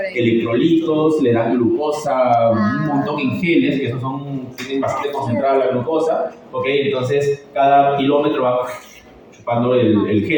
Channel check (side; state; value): both; identical; correlation 1.00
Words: Electrolitos, le dan glucosa, un montón en geles, que esos tienen bastante concentrada la glucosa, ¿ok? Entonces cada kilómetro va chupando el